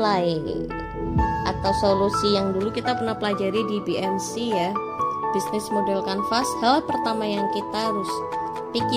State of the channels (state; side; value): identical; both; correlation 1.00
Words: atau solusi yang dulu kita pernah pelajari di BMC ya, Business Model Canvas. Hal pertama yang kita harus